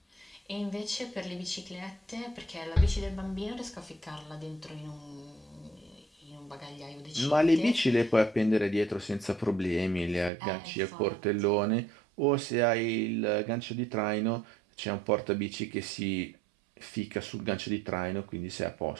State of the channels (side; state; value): left; drops out; at 10.3 s